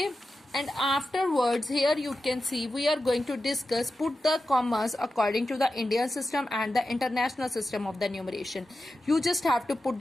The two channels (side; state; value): both; normal; correlation 0.91